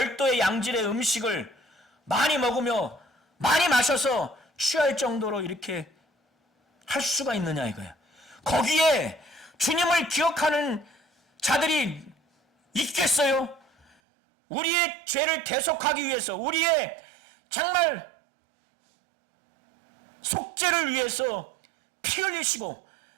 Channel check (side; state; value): left; drops out; at 14.0 s